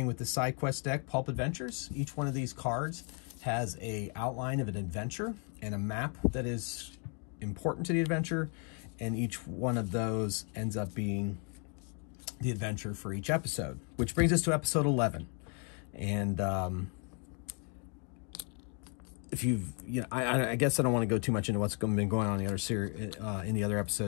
with the side quest deck, Pulp Adventures. Each one of these cards has an outline of an adventure and a map that is important to the adventure, and each one of those ends up being the adventure for each episode, which brings us to episode 11. And if you've, I guess I don't want to go too much into what's been going on in the other series, in the other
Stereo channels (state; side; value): quieter; right; 38.6 dB